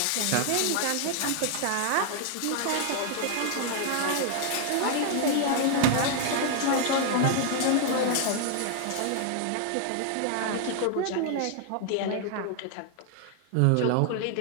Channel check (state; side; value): different; both; correlation 0.00